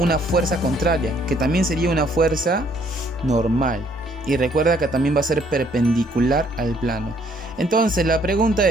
fuerza contraria, que también sería una fuerza normal. Y recuerda que también va a ser perpendicular al plano. Entonces la pregunta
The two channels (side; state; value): both; normal; correlation 0.65